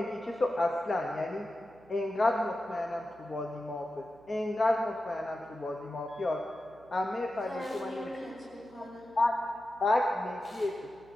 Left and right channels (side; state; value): right; noise; hum, 26 dB below the sound